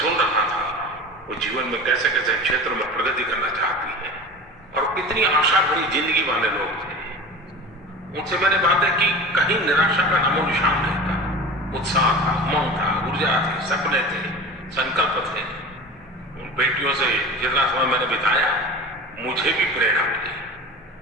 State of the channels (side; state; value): both; normal; correlation 0.34